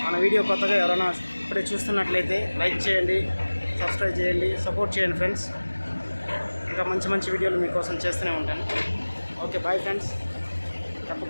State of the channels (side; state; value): both; inverted; correlation -1.00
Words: మన వీడియో కొత్తగా ఎవరైనా ఇప్పుడే చూస్తున్నట్లయితే లైక్ చేయండి, సబ్స్క్రైబ్ చేయండి, సపోర్ట్ చేయండి ఫ్రెండ్స్. ఇంకా మంచి మంచి వీడియోలు మీకోసం చేస్తూనే ఉంటాను. Okay, bye friends.